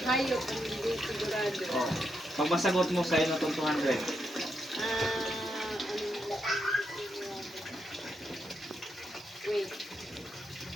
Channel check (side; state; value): both; normal; correlation 0.82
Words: hayop ang hindi sigurado? Oh, pag masagot mo sa'yo na itong 200. Wait.